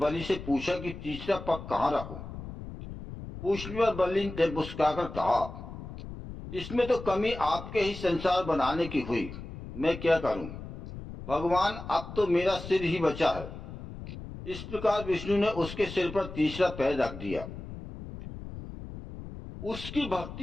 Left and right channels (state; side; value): noise; left; rumble, 11 dB below the sound